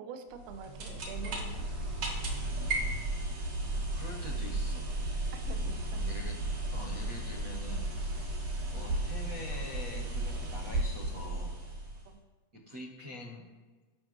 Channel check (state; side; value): late; left; 8.4 ms